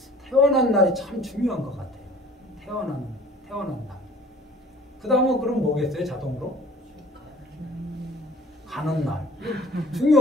태어난 날이 참 중요한 것 같아요. 태어난 날. 그 다음은 그럼 뭐겠어요? 자동으로? 가는 날.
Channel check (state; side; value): normal; both; correlation 0.51